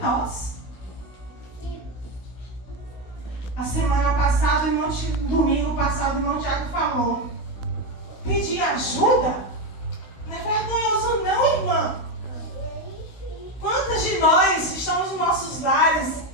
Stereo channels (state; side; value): late; right; 16 ms